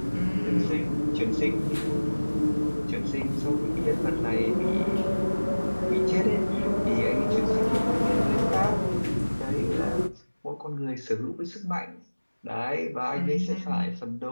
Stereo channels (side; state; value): both; inverted; correlation -1.00